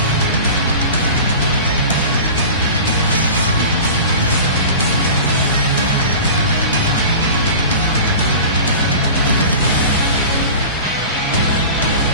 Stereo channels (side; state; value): both; inverted; correlation -0.36